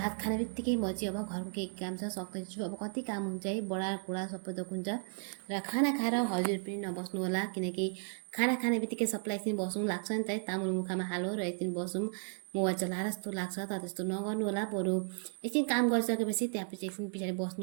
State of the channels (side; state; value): left; silent; 55 dB below the other